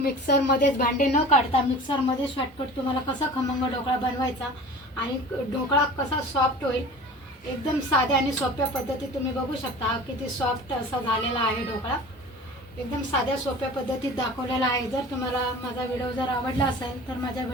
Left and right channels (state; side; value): normal; both; correlation 0.39